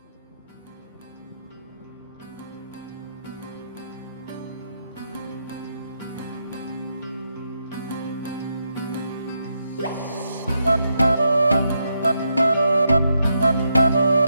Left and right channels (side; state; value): both; inverted; correlation -0.82